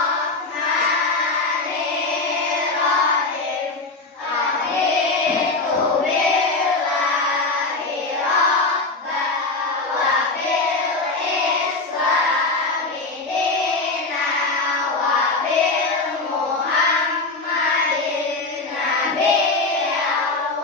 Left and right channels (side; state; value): right; quieter; 3.4 dB